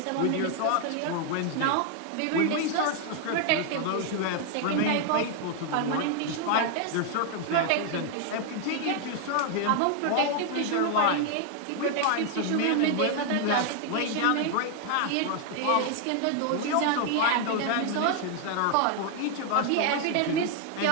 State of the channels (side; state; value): both; different; correlation 0.00